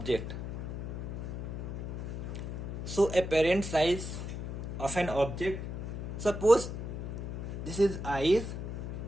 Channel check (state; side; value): noise; left; hum, 5 dB below the sound